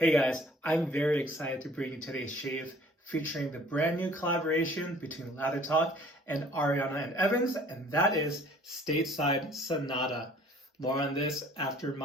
guys, I'm very excited to bring you today's shave featuring the brand new collaboration between Lather and Ariana and Evans, and that is Stateside Sonata. More on this after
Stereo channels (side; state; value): both; normal; correlation 0.54